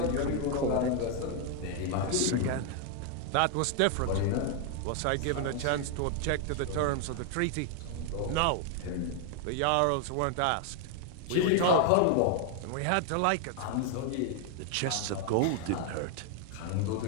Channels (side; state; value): both; different; correlation 0.00